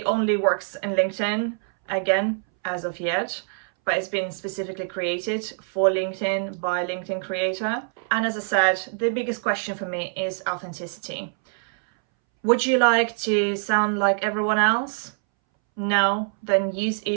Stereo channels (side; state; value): left; silent; 62 dB below the other